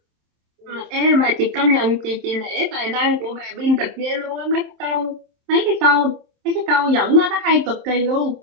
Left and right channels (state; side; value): late; left; 27 ms